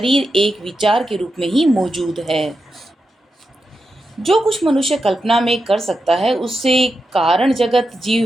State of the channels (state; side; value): normal; both; correlation 0.88